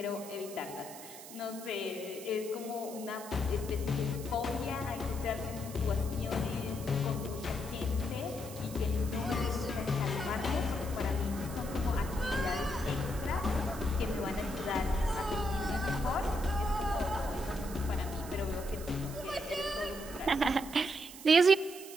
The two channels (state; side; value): noise; right; hiss, 14 dB below the sound